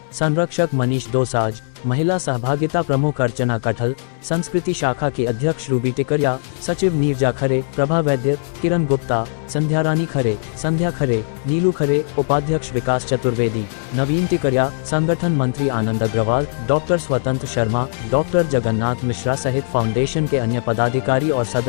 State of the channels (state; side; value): silent; right; 61 dB below the other